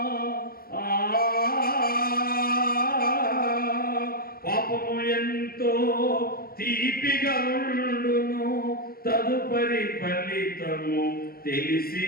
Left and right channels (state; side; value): late; right; 0.44 ms